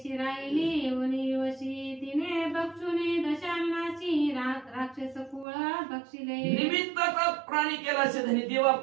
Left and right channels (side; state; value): left; drops out; at 5.5 s